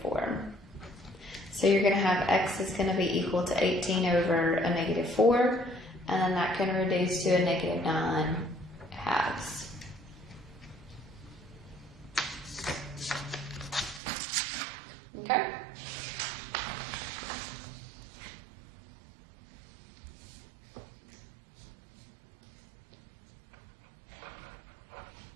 4. So you're going to have x is going to be equal to 18 over a negative 4. And then that can reduce to a negative 9 halves. Okay?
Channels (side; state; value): left; drops out; at 14.0 s